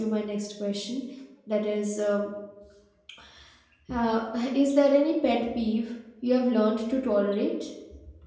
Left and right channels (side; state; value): both; identical; correlation 1.00